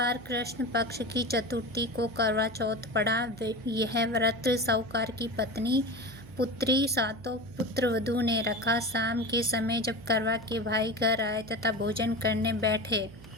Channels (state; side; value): noise; right; hum, 19 dB below the sound